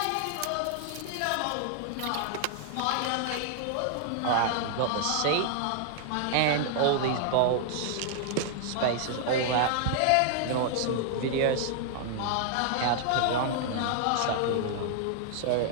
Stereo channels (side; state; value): both; different; correlation 0.00